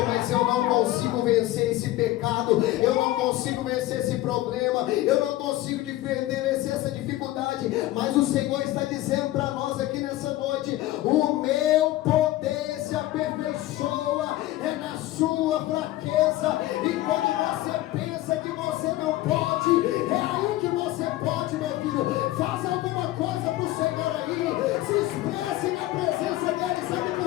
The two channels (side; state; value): right; quieter; 16.1 dB